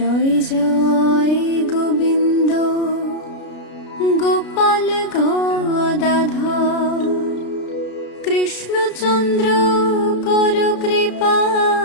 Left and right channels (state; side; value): late; right; 33 ms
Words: জয় গোবিন্দ গোপাল গদাধর কৃষ্ণচন্দ্র কর কৃপা